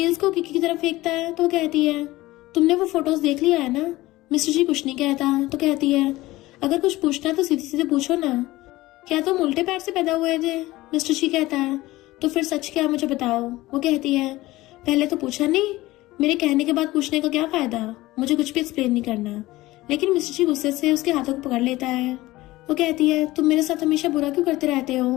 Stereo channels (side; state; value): right; quieter; 18.3 dB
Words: को किकी की तरफ फेंकता है तो कहती है तुमने वो फोटोज देख लिया है ना। मिस्टर ची कुछ नहीं कहता तो कहती है अगर कुछ पूछना तो सीधे सीधे पूछो ना, क्या तुम उल्टे पैर से पैदा हुए थे। मिस्टर ची कहता है तो फिर सच क्या मुझे बताओ। वो कहती है पहले तो पूछा नहीं, मेरे कहने के बाद पूछने का क्या फायदा, मुझे कुछ भी एक्सप्लेन नहीं करना। लेकिन मिस्टर ची गुस्से से उसके हाथों को पकड़ लेता है। वो कहती है तुम मेरे साथ हमेशा बुरा क्यों करते रहते हो।